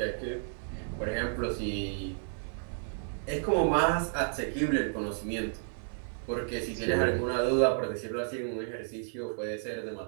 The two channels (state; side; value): silent; left; 56 dB below the other